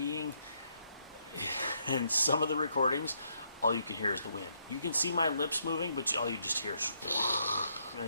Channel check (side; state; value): both; inverted; correlation -0.75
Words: in some of the recordings, all you can hear is the wind. You can see my lips moving, but all you just hear is,